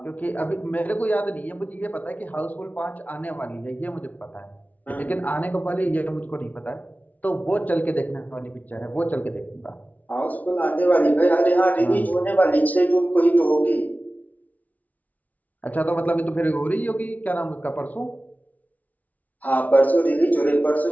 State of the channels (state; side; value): late; right; 0.074 ms